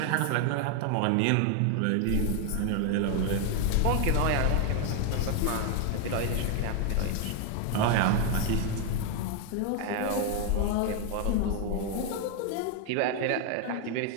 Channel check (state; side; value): different; both; correlation 0.01